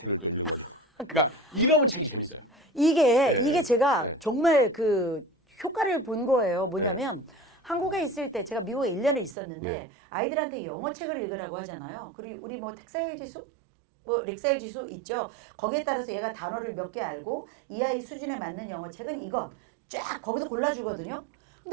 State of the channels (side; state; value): left; drops out; at 9.3 s